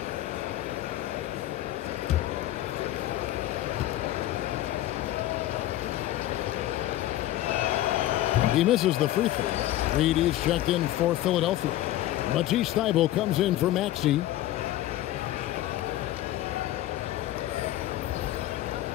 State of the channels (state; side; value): quieter; right; 14.4 dB